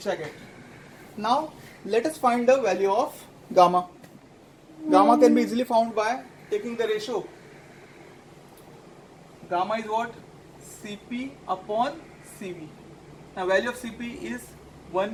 I get. Now let us find the value of gamma. Gamma can be easily found by taking the ratio. Gamma is what? Cp upon Cv. Now value of Cp is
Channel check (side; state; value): both; identical; correlation 1.00